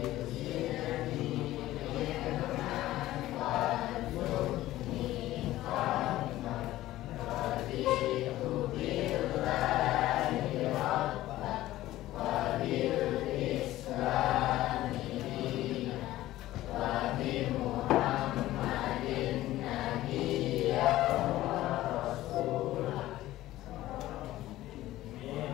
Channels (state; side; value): quieter; right; 15.5 dB